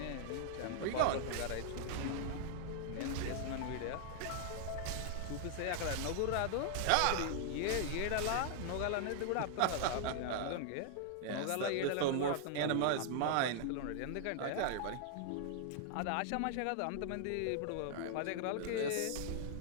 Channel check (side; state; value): both; different; correlation 0.00